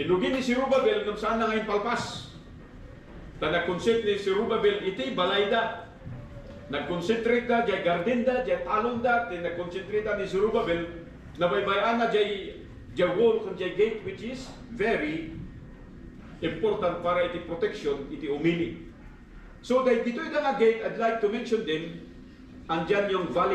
ni Zerubbabel kung saan na ngayon palpas. Nag-concentrate ni Zerubbabel iti balayda. Nag-concentrate na diya gardenda, diya talonda, nag-concentrate ni Zerubbabel na baybayan na diya wall kung diya gate, which is very important para iti protection, iti umili. So dito yung nga gate, I'd like to mention din, andyan yung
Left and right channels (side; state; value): both; identical; correlation 1.00